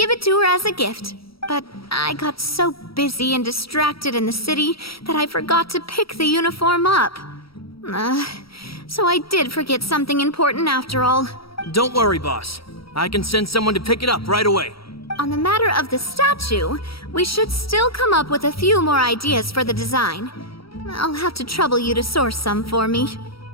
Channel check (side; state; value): right; late; 0.75 ms